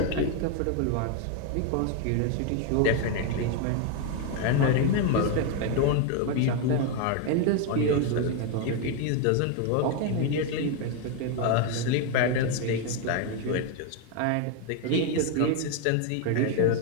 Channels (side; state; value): both; different; correlation 0.01